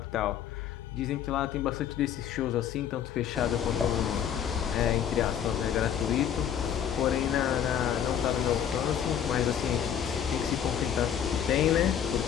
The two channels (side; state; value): right; quieter; 9.1 dB